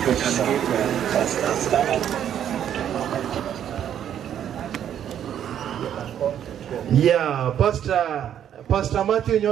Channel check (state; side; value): quieter; left; 9.8 dB